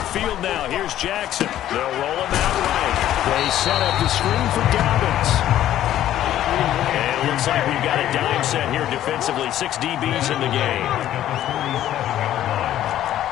now, here's Jackson. They'll roll him out right. They set up the screen for Dobbins. And it looks like we've got a dime set here defensively. 6 DBs in the game.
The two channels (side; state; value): right; quieter; 12.4 dB